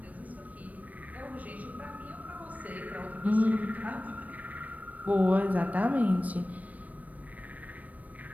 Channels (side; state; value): left; late; 0.072 ms